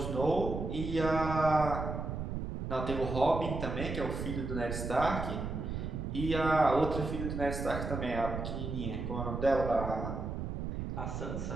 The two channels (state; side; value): noise; right; rumble, 4 dB below the sound